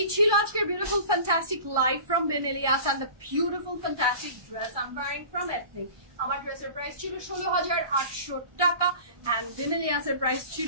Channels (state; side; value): late; left; 1.2 ms